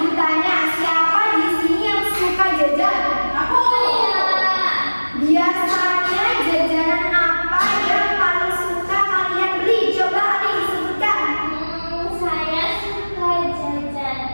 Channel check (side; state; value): both; inverted; correlation -1.00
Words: tanya, siapa di sini yang suka jajan? Aku ya. Biasanya jajanan apa yang paling suka kalian beli? Coba ada disebutkan. Saya suka jajan